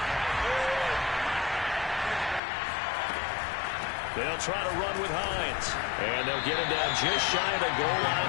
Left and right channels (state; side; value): drops out; right; at 2.4 s